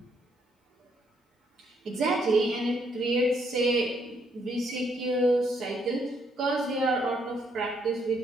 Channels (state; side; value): normal; both; correlation 0.72